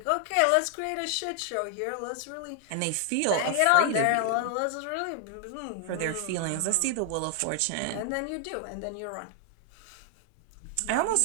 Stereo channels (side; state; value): both; different; correlation 0.00